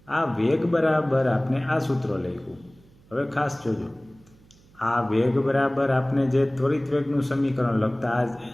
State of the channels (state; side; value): noise; right; hum, 28 dB below the sound